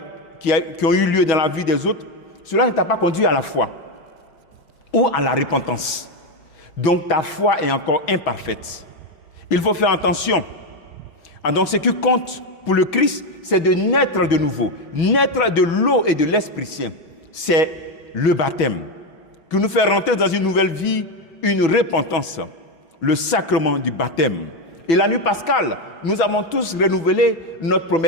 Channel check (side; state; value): right; late; 6.1 ms